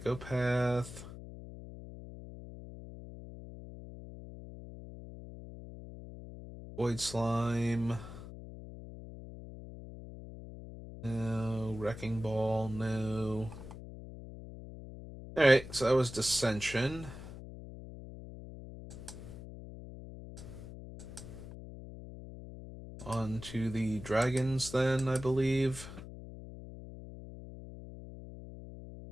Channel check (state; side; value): noise; left; hum, 13 dB below the sound